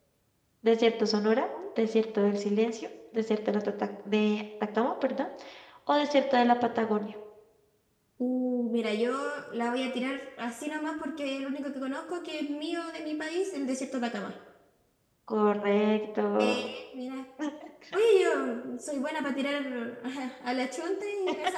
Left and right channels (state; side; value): identical; both; correlation 1.00